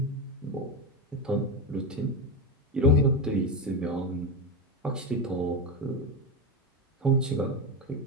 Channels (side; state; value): both; normal; correlation 0.15